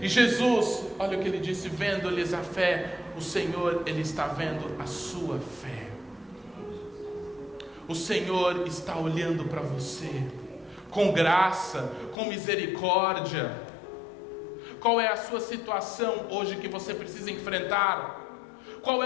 Jesus, olha o que ele disse: vendo-lhes a fé. O Senhor, Ele está vendo a sua fé. O Senhor está olhando para você com graça, com misericórdia. Qual é a sua situação hoje que você precisa enfrentar? Qual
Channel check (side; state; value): right; drops out; at 12.2 s